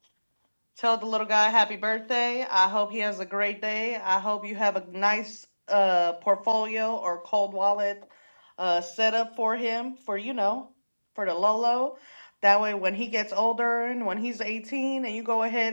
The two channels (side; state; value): both; inverted; correlation -1.00